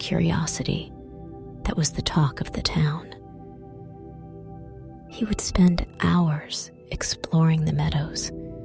that was the talk of the town. He would spend hours exploring the meadows,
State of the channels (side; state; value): both; identical; correlation 1.00